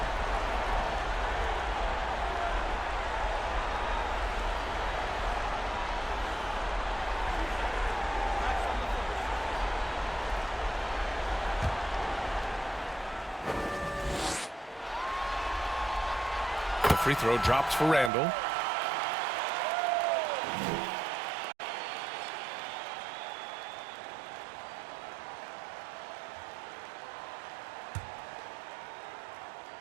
The free throw drops for Randall.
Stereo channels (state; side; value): drops out; left; at 18.1 s